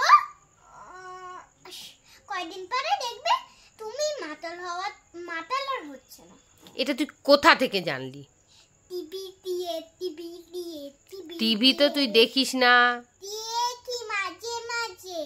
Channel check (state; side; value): identical; both; correlation 1.00